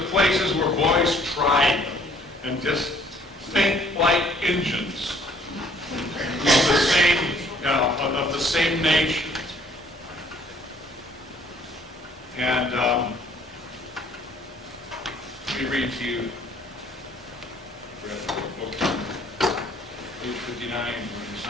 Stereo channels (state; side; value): normal; both; correlation 0.60